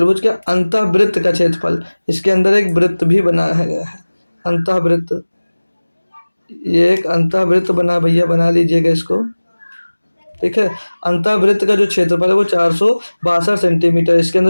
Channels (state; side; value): inverted; both; correlation -1.00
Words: के अंतःवृत्त का क्षेत्रफल, इसके अंदर एक वृत्त भी बनाया गया है, अंतःवृत्त। ये एक अंतःवृत्त बना भैया, बना लीजिएगा इसको, ठीक है। अंतःवृत्त का जो क्षेत्रफल है वो 462 सेंटीमीटर, इसके